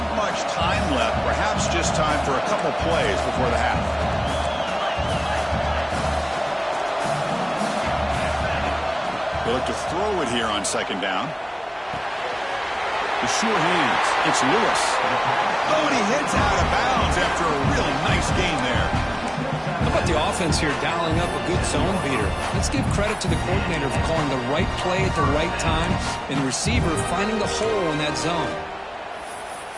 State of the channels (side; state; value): both; identical; correlation 1.00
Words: much time left. Perhaps just time for a couple plays before the half. They look to throw it here on second down. The sure hands. It's Lewis. Oh, and he hits out of bounds after a really nice gain there. How about the offense here dialing up a good zone beater? Let's give credit to the coordinator for calling the right play at the right time and the receiver finding the hole in that zone.